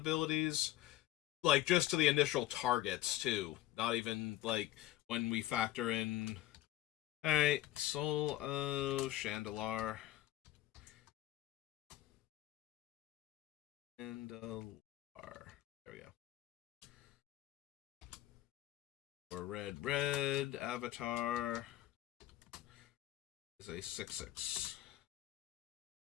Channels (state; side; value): quieter; right; 14.9 dB